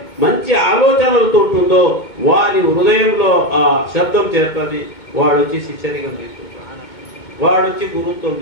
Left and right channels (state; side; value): late; right; 2.2 ms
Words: మంచి ఆలోచనలతో ఉంటుందో వారి హృదయంలో ఆ శబ్దం చేస్తుంది. వాడు వచ్చి శిష్యరికం తీసుకుంటాడు, వాడు వచ్చి గురుత్వం